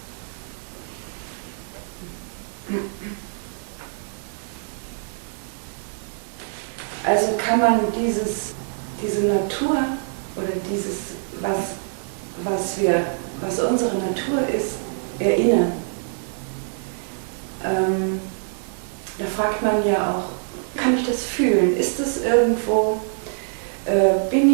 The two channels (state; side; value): silent; left; digital silence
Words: Also kann man diese Natur oder dieses, was unsere Natur ist, erinnern. Da fragt man ja auch, kann ich das fühlen? Ist das irgendwo,